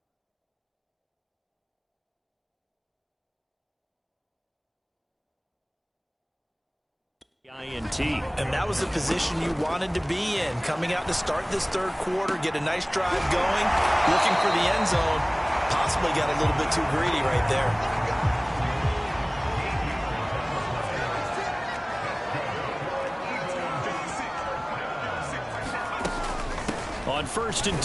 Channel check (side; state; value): both; identical; correlation 1.00